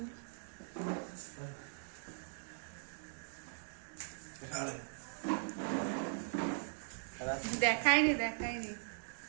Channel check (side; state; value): left; silent; digital silence